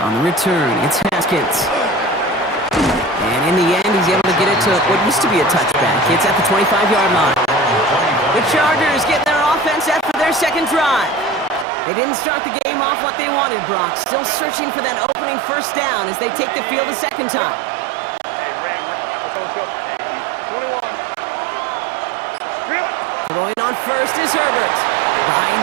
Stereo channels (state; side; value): drops out; left; at 11.7 s